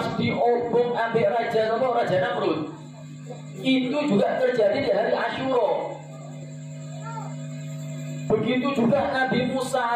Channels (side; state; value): both; identical; correlation 1.00